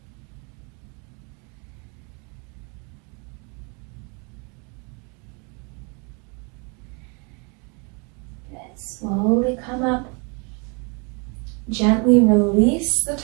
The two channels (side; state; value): left; quieter; 33.7 dB